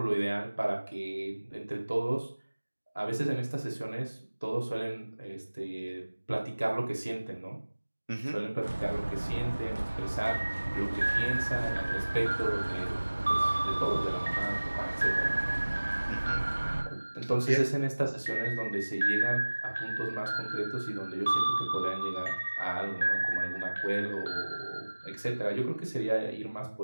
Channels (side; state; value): both; inverted; correlation -1.00